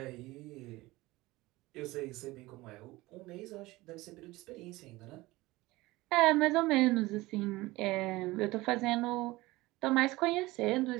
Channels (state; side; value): quieter; left; 19.8 dB